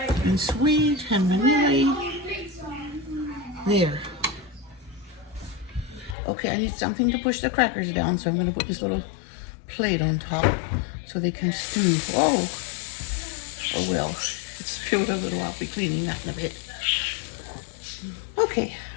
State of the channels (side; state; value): right; drops out; at 6.2 s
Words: make it. and sweet and vanilla. There. Okay, I need something to push the crackers down, so I'm going to put this little plate on top so they can stew. Whoa! Oh well, it's spilled a little. I'll be cleaning that in a bit. Okay,